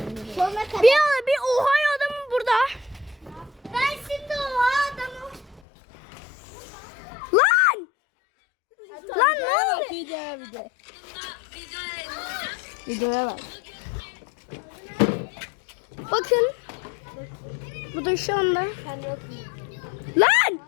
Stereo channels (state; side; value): drops out; right; at 5.6 s